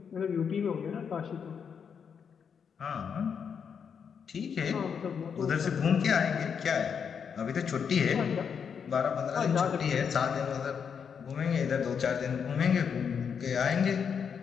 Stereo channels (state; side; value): quieter; right; 6.9 dB